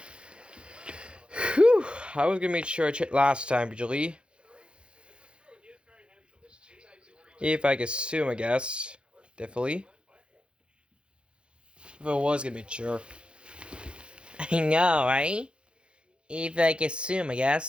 Whew, I was gonna make sure I checked last time, Julie. If I could assume, I guess. Definitely. If I was gonna make sure. I know, right? If I could assume, I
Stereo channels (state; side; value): late; left; 0.056 ms